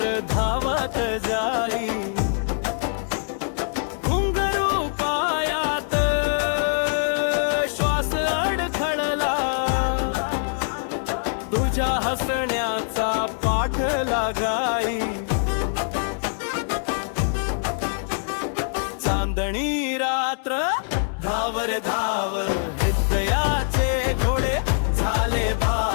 धावत जाई घुंगरू पायात श्वास अडखळला तुझ्या हसण्याचा पाठ लागाई चांदणी रात्र धावर धाव हृदयाचे घोडे झाले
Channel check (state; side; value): silent; right; 62 dB below the other